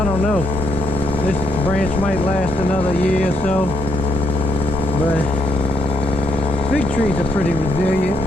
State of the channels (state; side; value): normal; both; correlation 0.75